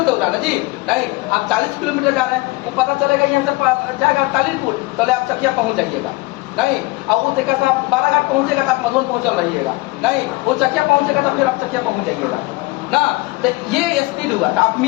दौड़ा ना जी नहीं, आप 40 किलोमीटर जा रहे हैं, वो पता चलेगा यहाँ से जाएगा तालीलपुर, तो आप चकिया पहुंच जाइएगा नहीं। और वो देखा था 12 घाट पहुंचेगा तो आप मधुबन पहुंचल रहिएगा नहीं, वो चकिया पहुंचेगा तो फिर आप चकिया पहुंच जाइएगा ना। तो ये स्पीड हुआ, तो आप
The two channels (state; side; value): quieter; right; 22.6 dB